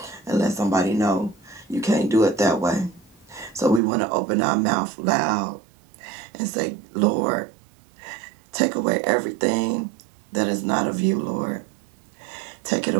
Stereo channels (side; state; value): left; drops out; at 3.8 s